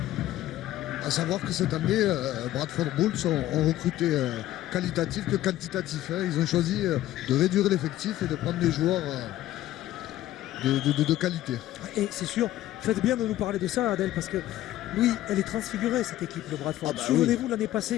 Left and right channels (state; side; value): quieter; right; 14.2 dB